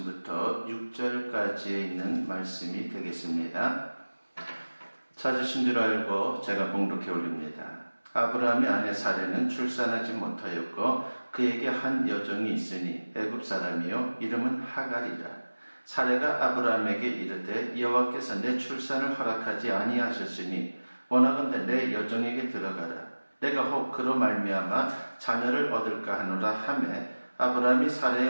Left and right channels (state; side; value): inverted; both; correlation -1.00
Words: 6절까지에 있는 말씀이 되겠습니다. 찾으신 줄 알고 제가 봉독해 올립니다. 아브라함의 아내 사레는 출산하지 못하였고 그에게 한 여종이 있으니 애굽 사람이요 이름은 하갈이라. 사레가 아브라함에게 이르되 여호와께서 내 출산을 허락하지 아니하셨으니 원하건대 내 여종에게 들어가라. 내가 혹 그로 말미암아 자녀를 얻을까 하노라 하매 아브라함이